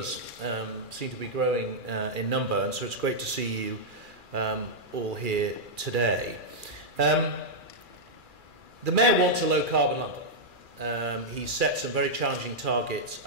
seem to be growing in number, and so it's great to see you all here today. The Mayor wants a low-carbon London. He set some very challenging targets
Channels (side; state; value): left; late; 2.4 ms